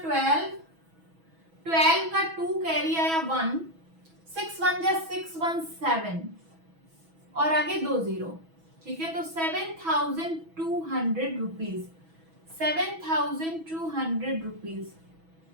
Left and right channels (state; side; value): late; left; 6.1 ms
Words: 12, 12 का 2 कैरी आया 1, 6 1 जा 6 1 7 और आगे 2 0। ठीक है, तो 7200 रुपीज, 7200 रुपीज